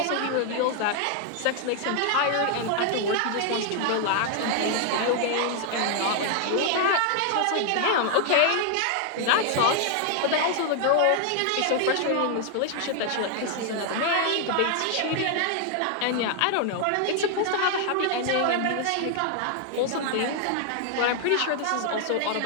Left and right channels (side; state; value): both; different; correlation 0.00